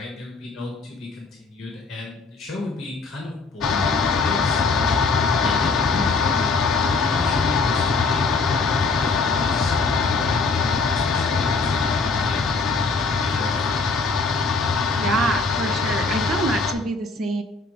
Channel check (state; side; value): quieter; right; 4.0 dB